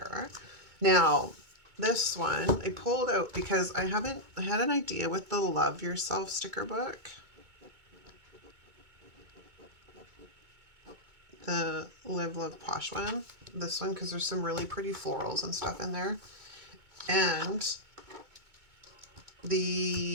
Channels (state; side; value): late; left; 2.2 ms